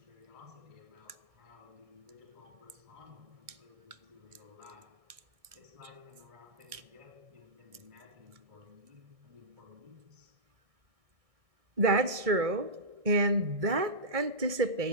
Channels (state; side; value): late; left; 1.6 ms